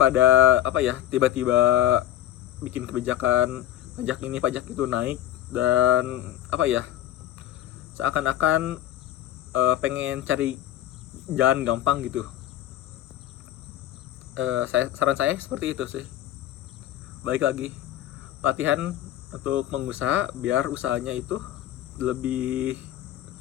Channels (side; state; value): right; quieter; 12.8 dB